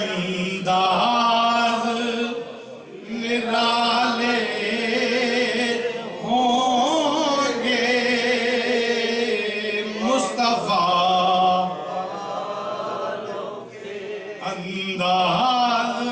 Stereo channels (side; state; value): both; identical; correlation 1.00